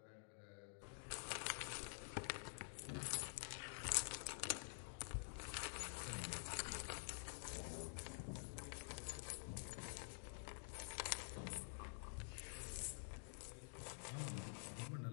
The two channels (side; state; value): right; silent; digital silence